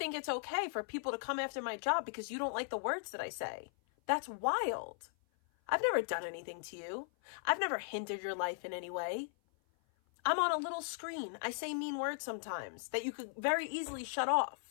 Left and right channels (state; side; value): silent; right; 53 dB below the other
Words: it's okay for people to come after my job because you don't like the words that I say. That's wild. I've never done anything to you. I've never hindered your life in any way. I'm on a little screen. I say mean words sometimes that you could very easily shut